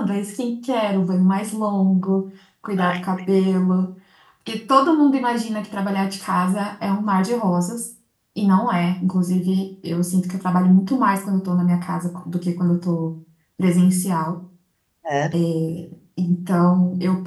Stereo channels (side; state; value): both; identical; correlation 1.00